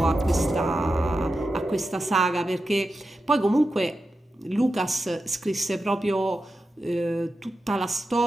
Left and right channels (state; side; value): normal; both; correlation 0.90